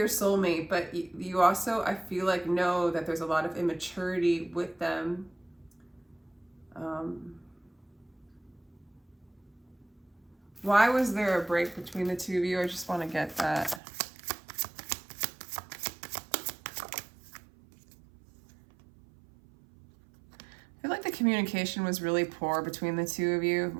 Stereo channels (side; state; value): left; drops out; at 13.8 s